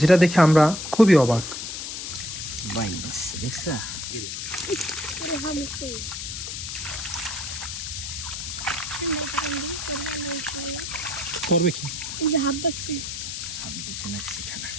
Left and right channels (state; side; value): noise; left; hiss, 6 dB below the sound